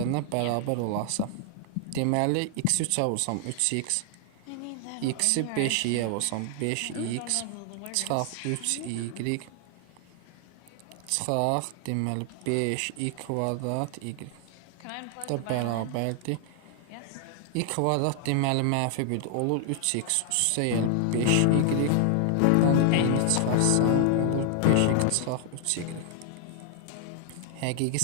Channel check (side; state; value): both; different; correlation 0.00